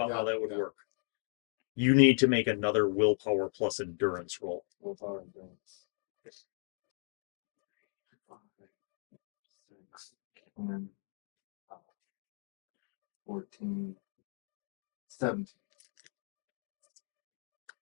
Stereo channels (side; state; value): right; silent; 53 dB below the other